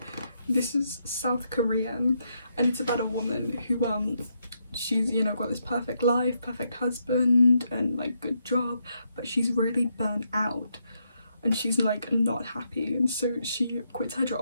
This is South Korean, and it's about a woman who she's, you know, got this perfect life, perfect husband, and like good job, but she's really burnt out. And she's like not happy, and so she quits her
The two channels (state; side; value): inverted; both; correlation -0.79